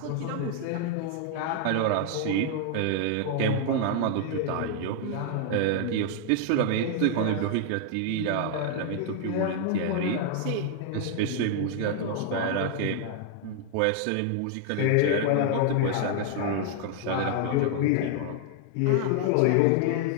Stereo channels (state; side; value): different; both; correlation 0.00